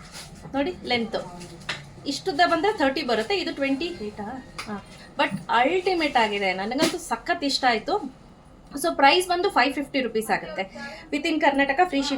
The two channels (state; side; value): identical; both; correlation 1.00